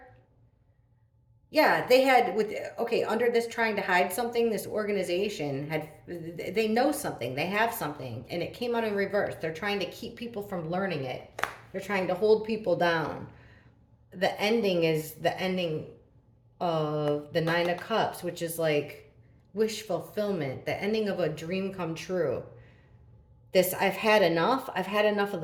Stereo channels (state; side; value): identical; both; correlation 1.00